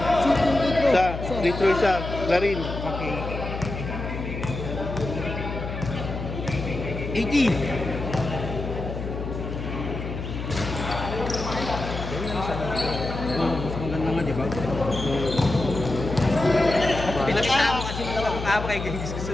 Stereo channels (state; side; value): noise; left; hum, 6 dB below the sound